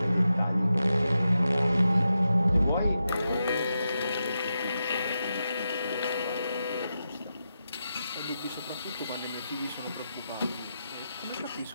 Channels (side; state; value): both; inverted; correlation -0.88